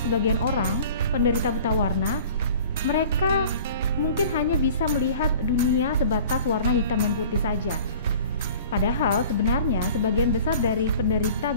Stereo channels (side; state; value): both; inverted; correlation -0.45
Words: sebagian orang penderita buta warna, mereka mungkin hanya bisa melihat dunia sebatas warna hitam dan putih saja. Padahal sebenarnya sebagian besar dari penderita